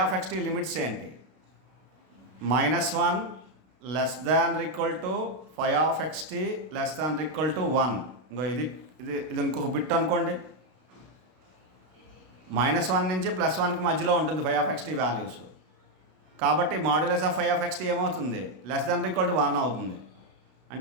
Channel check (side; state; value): left; late; 32 ms